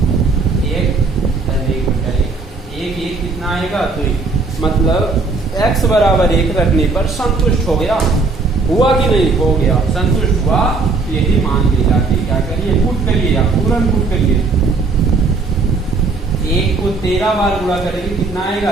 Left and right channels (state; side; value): quieter; left; 4.0 dB